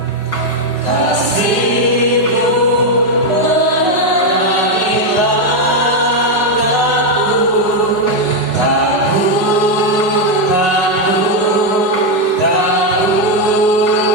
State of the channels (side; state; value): right; late; 5.4 ms